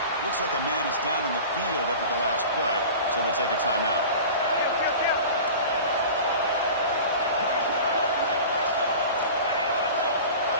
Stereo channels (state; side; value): inverted; both; correlation -0.37